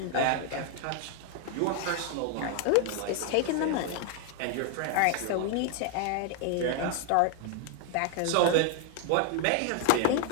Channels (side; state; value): both; different; correlation 0.00